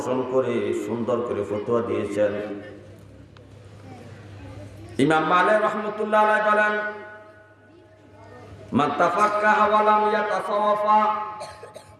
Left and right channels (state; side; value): identical; both; correlation 1.00